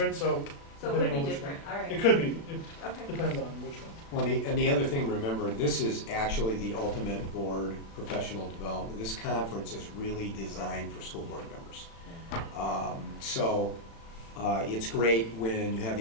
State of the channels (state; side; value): late; right; 36 ms